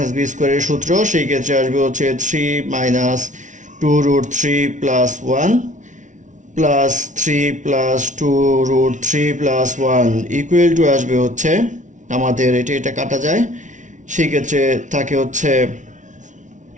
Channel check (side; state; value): left; late; 0.37 ms